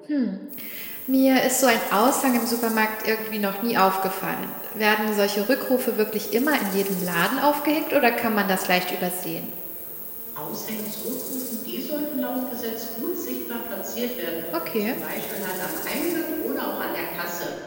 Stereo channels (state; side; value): identical; both; correlation 1.00